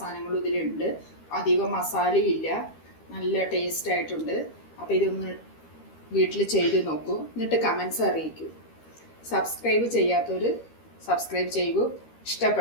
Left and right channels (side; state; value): right; late; 13 ms